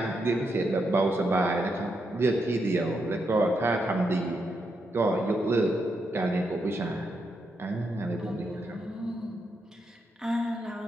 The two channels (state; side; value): normal; both; correlation 0.82